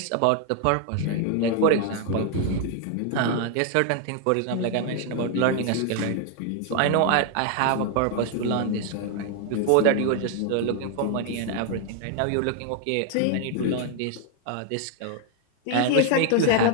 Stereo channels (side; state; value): both; different; correlation 0.00